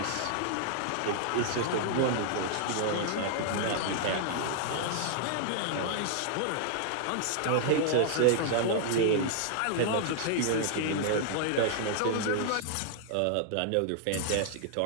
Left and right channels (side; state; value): both; different; correlation -0.01